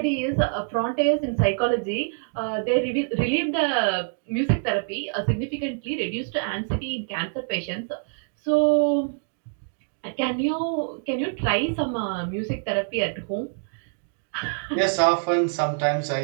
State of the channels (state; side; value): silent; left; digital silence